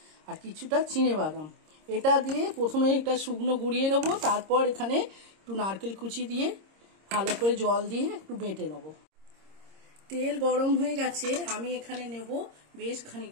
আর কিছুটা চিনেবাদাম। এটা দিয়ে প্রথমে এটা শুকনো গুঁড়িয়ে নেবো, তারপর এখানে একটু নারকেল কুচি দিয়ে ভালো করে জল দিয়ে একটু বেটে নেবো। তেল গরম হয়ে গেছে, আমি এখানে নেব বেশ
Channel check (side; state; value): left; late; 26 ms